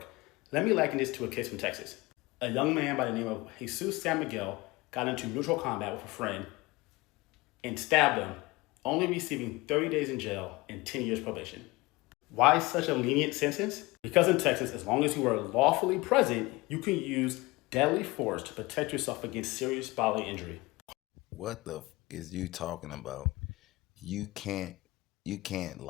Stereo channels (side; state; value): right; quieter; 22.0 dB